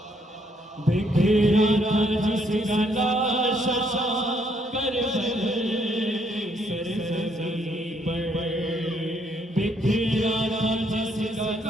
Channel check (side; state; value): both; normal; correlation 0.70